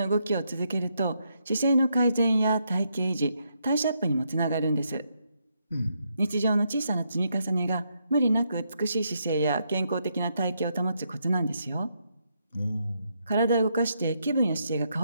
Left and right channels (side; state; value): both; inverted; correlation -0.78